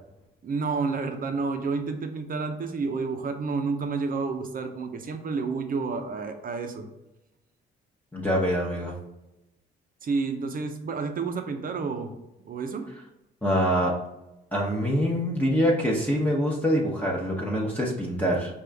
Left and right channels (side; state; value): both; normal; correlation 0.56